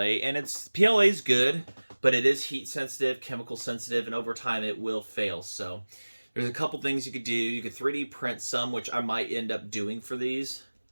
and PLA is good, but it is heat sensitive, chemical sensitive, and over time it will fail. So there's a couple things you could do. You could 3D print some, which I might end up doing for these.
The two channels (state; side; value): inverted; both; correlation -1.00